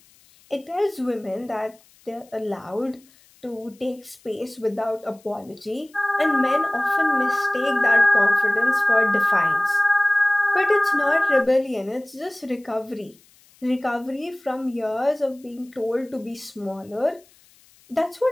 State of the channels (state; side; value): noise; left; hiss, 30 dB below the sound